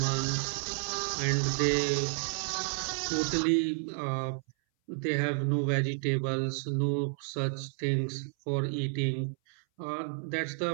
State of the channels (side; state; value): left; silent; 57 dB below the other